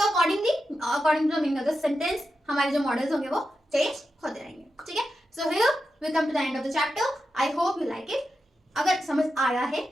according to meaning of the sentence हमारे जो मॉडल्स होंगे वो चेंज होते रहेंगे, ठीक है। So here we come to the end of the chapter. I hope you like it. अगर समझ आया है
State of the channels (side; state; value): both; normal; correlation 0.89